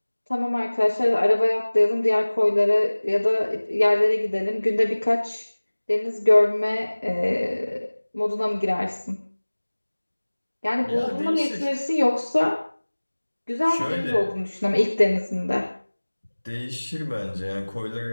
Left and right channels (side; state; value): both; inverted; correlation -1.00